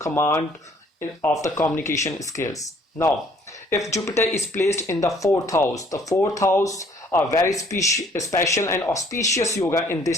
of the communication skills. Now, if Jupiter is placed in the fourth house, the fourth house a very special and auspicious yoga in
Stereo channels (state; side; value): normal; both; correlation 0.60